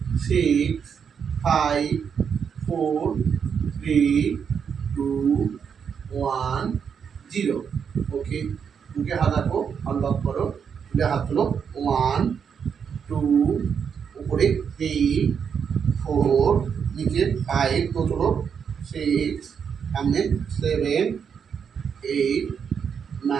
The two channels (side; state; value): left; quieter; 7.0 dB